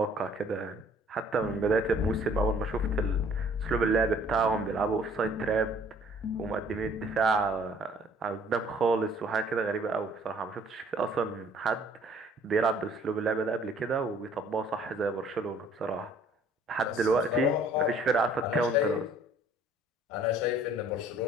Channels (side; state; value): both; normal; correlation 0.57